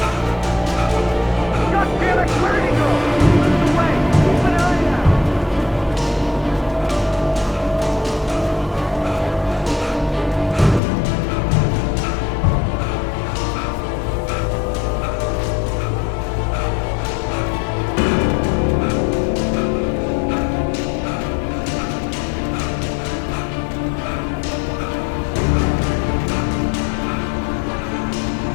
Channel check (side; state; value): right; drops out; at 10.8 s